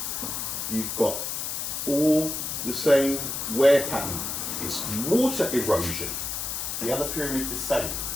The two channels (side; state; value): left; noise; hiss, 3 dB below the sound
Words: you've got all the same wear pattern. It's water erosion. The other pyramid the same.